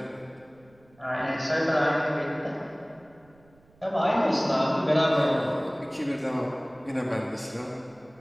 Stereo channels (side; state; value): right; noise; rumble, 30 dB below the sound